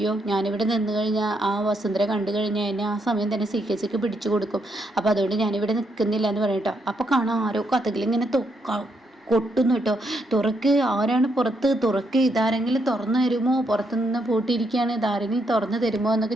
ഞാനിവിടെ നിന്ന് കഴിഞ്ഞാൽ ആ വസുന്ധര കണ്ടു കഴിഞ്ഞാൽ എന്നെ ആ സമയം തന്നെ CKCക്ക് പിടിച്ചു കൊടുക്കും. അപ്പോൾ അതുകൊണ്ട് ഞാനിവിടെ നിൽക്കുന്നില്ല എന്ന് പറയട്ടോ. അപ്പോൾ കാണാം ആരോ കഥകളിങ്ങനെ കൊട്ടുന്നു കേട്ടോ. തുറക്ക്, ആരാണ് പുറത്ത്? തുറക്ക്, ഇതാരെങ്കിലും തുറന്നു തരുമോ? പുറത്തുനിന്ന് പൂട്ടിയിരിക്കുകയാണ്, ഇതാരെങ്കിലും തുറന്നു തരുമോ എന്നൊക്കെ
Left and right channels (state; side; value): normal; both; correlation 0.77